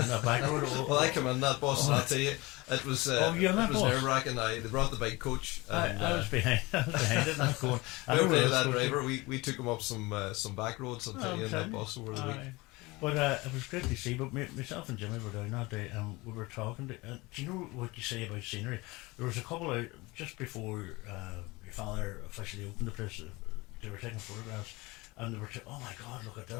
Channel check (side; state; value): right; quieter; 22.9 dB